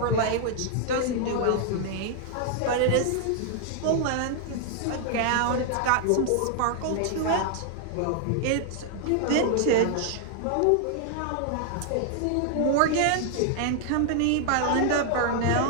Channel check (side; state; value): both; different; correlation 0.00